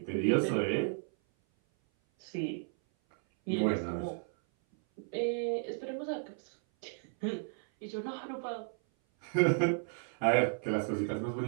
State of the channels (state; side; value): silent; left; 55 dB below the other